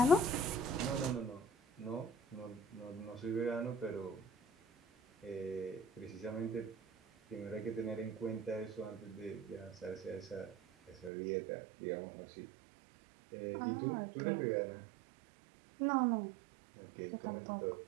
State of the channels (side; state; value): left; drops out; at 11.1 s